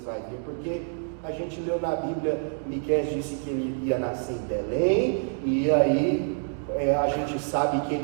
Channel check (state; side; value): silent; left; 60 dB below the other